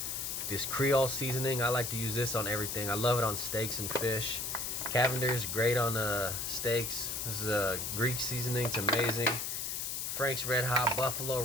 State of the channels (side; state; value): left; noise; hiss, 3 dB below the sound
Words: This Creole seasoning, I like to use this on everything. I love it on steaks and fish. Cavender's great on steaks. This is a Greek seasoning, it's amazing. Frank's Red Hot, Buffalo